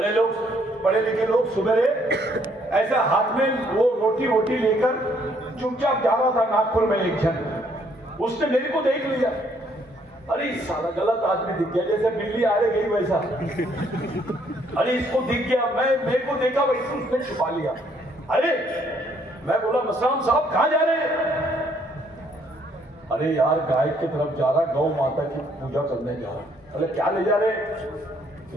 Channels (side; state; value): both; normal; correlation 0.67